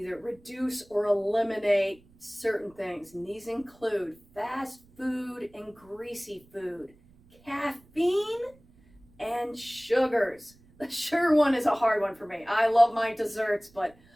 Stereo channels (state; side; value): noise; right; rumble, 29 dB below the sound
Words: reduce or eliminate certain things. And these include fast food and greasy food, caffeine, and sugars. The sugar one is a hard one for me. I love my desserts, but